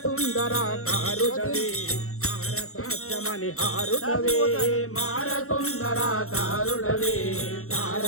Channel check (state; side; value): late; right; 0.63 ms